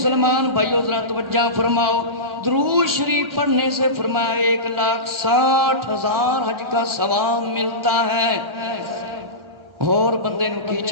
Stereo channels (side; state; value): left; late; 1.3 ms